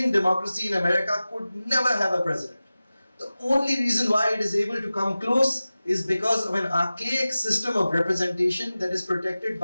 democracy in America, could never have a president. The only reason why it is able to come close is because of an archaic system of representation that is protected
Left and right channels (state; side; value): inverted; both; correlation -0.96